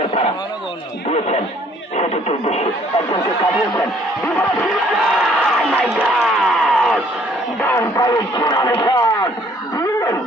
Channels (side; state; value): both; normal; correlation 0.60